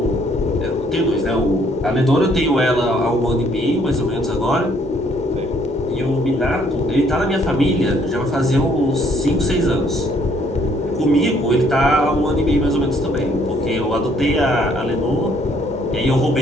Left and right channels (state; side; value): normal; both; correlation 0.65